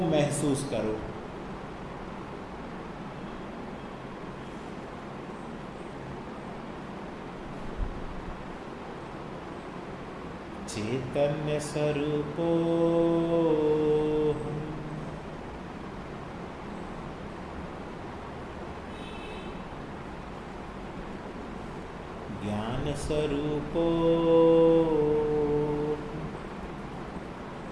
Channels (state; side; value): identical; both; correlation 1.00